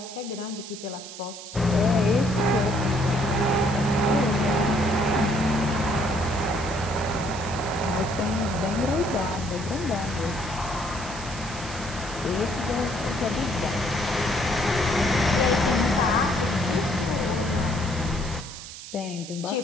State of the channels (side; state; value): right; noise; hiss, 13 dB below the sound